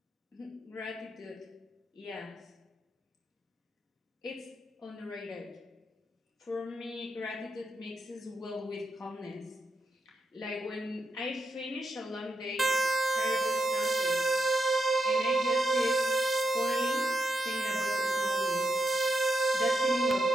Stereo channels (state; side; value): normal; both; correlation 0.83